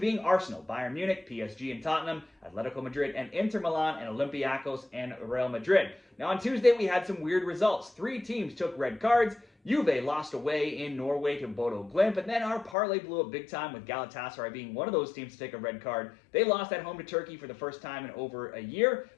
Arsenal, Bayern Munich, PSG and Tottenham, Atletico Madrid and Inter Milan and Olympiacos and Real Madrid. Now on Tuesday we had some weird results. 3 teams took red cards. Juve lost away in Norway to Bodo Glimt, and then our parlay blew up big time with Galatasaray being one of those teams to take a red card. They lost at home to Turkey for the first time in over a year.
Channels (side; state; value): right; drops out; at 12.8 s